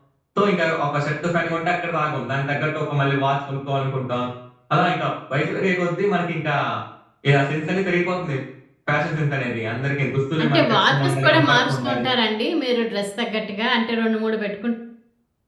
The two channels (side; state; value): both; identical; correlation 1.00